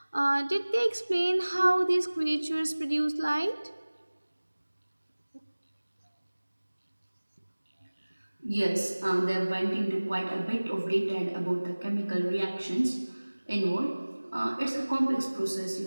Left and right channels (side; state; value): both; inverted; correlation -1.00